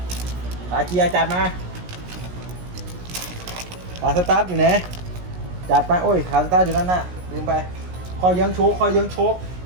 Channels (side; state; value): left; late; 17 ms